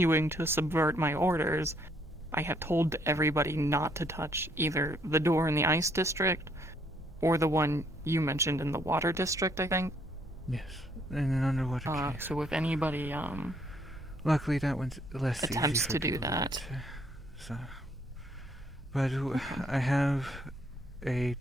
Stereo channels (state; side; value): normal; both; correlation 0.68